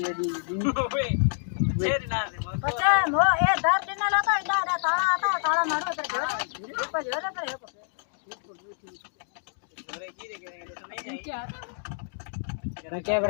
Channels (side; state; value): right; silent; digital silence